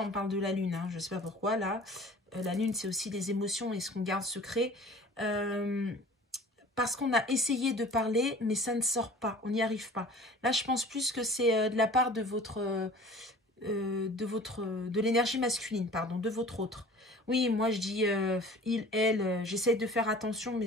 on parle de la lune, hein, je sais pas pourquoi là. La lune c'est aussi des émotions et ce qu'on garde secret. Parce qu'on a essayé de parler, mais ça ne sort pas, on n'y arrive pas. Là, je pense plus que c'est de la part de de l'énergie masculine, pardon, de votre autre. Oui, moi je dis il, elle, j'essaie de faire attention, mais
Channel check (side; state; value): both; normal; correlation 0.45